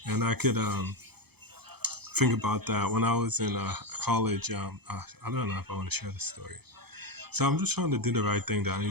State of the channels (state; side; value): late; left; 0.97 ms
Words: And I could think about that when I was in college. I don't know if I want to share this story. So I'm just trying to do the right thing that I need